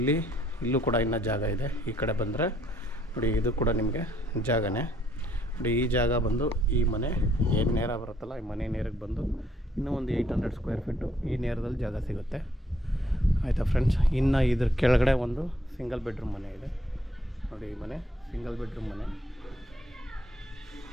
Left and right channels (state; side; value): normal; both; correlation 0.67